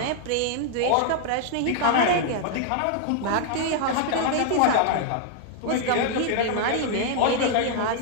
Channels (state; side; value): different; both; correlation 0.00